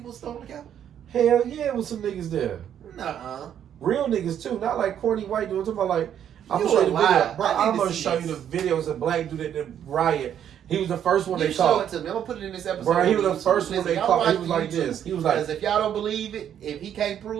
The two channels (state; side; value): quieter; left; 9.6 dB